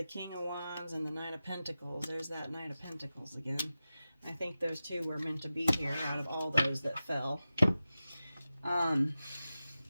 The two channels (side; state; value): both; inverted; correlation -0.94